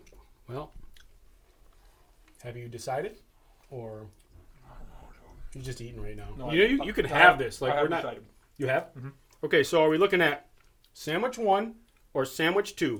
Well, have you decided, or you're just eating right now? No, you could I have this. Like I we're have not. decided. You have? Okay, so are we looking at sandwich 1 or sandwich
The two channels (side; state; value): both; identical; correlation 1.00